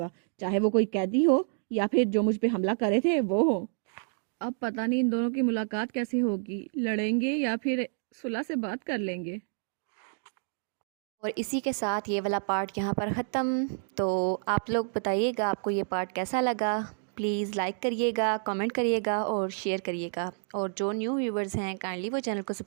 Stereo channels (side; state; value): left; silent; digital silence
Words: चाहे वो कोई कैदी हो या फिर जो मुझ पे हमला करे थे वो हो। अब पता नहीं इन दोनों की मुलाकात कैसे होगी, लड़ेंगे या फिर सुलह से बात कर लेंगे। और इसी के साथ ये वाला पार्ट यहाँ पर ख़त्म। तो आप लोग बताइएगा आपको ये पार्ट कैसा लगा। प्लीज़ लाइक करिएगा, कमेंट करिएगा और शेयर करिएगा। और जो न्यू व्यूवर्स हैं काइंडली वो चैनल को